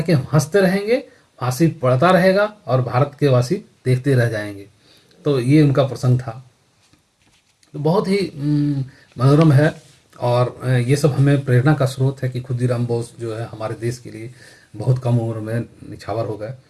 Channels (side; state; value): both; identical; correlation 1.00